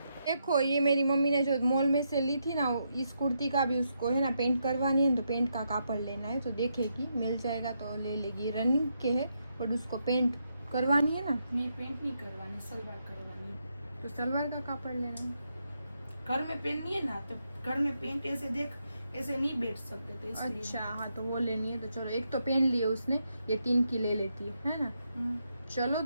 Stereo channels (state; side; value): inverted; both; correlation -0.81